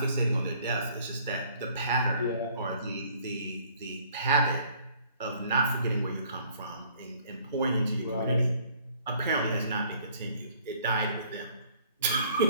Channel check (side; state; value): both; inverted; correlation -0.59